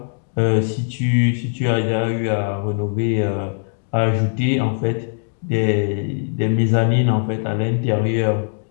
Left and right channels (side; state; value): right; silent; digital silence